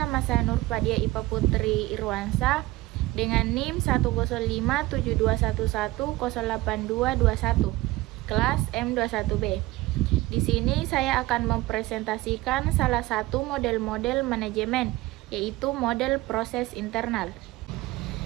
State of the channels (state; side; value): quieter; left; 18.6 dB